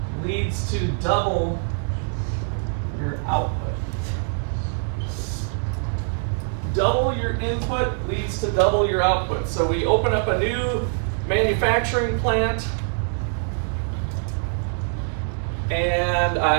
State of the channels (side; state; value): left; silent; 63 dB below the other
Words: leads to double your output. Double your input leads to double your output. So we open up a new manufacturing plant and